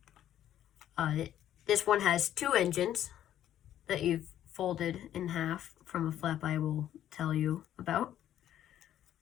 This one has two engines that you've folded in half from a flap I will tell you about.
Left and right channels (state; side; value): quieter; right; 11.4 dB